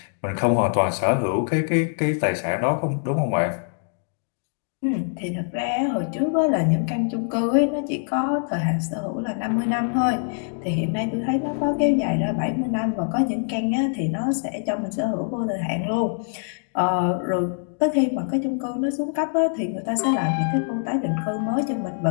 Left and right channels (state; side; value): silent; right; 63 dB below the other